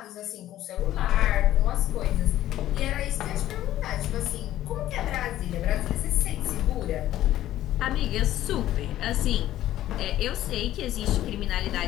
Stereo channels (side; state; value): right; quieter; 13.4 dB